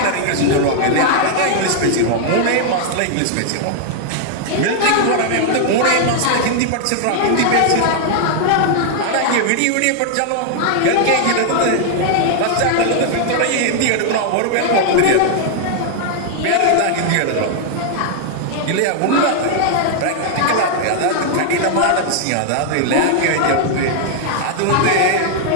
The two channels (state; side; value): different; both; correlation 0.00